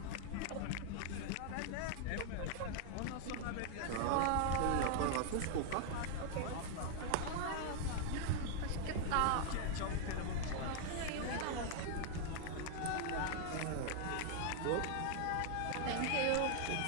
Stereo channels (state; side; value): different; both; correlation 0.00